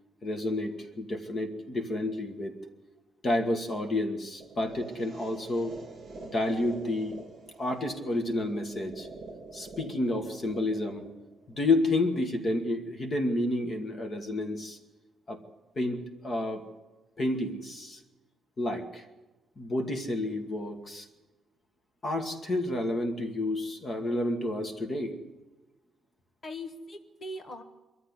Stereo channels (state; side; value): normal; both; correlation 0.72